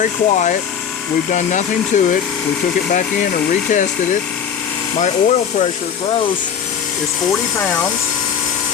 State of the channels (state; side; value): quieter; right; 7.9 dB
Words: quiet. We've done nothing to it. We took it back in and retested it. My oil pressure gross is 40 pounds.